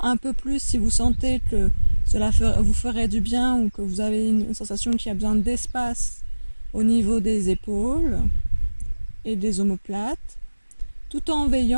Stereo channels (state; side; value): inverted; both; correlation -1.00